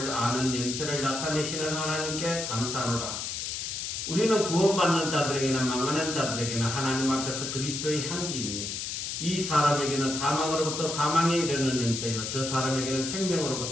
아는 냄새를 나타내시는 하나님께 감사하노라. 우리는 구원받는 자들에게나 망하는 자들에게나 하나님 앞에서 그리스도의 향기이니 이 사람에게는 사망으로부터 사망에 이르는 냄새요 저 사람에게는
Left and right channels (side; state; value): left; noise; hiss, 4 dB below the sound